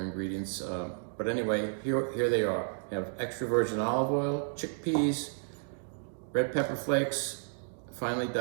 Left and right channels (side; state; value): left; silent; digital silence